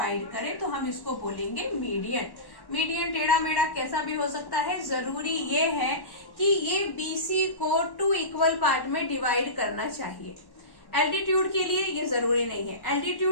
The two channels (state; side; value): late; right; 1.1 ms